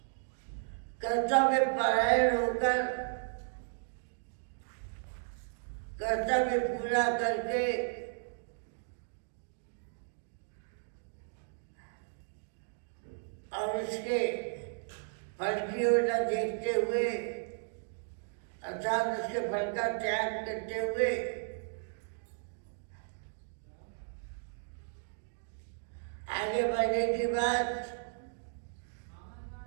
कर्तव्य परायण होकर कर्तव्य पूरा करके और उसके फल की ओर न देखते हुए, अर्थात उसके फल का त्याग करते हुए आगे बढ़ने की बात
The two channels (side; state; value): left; silent; digital silence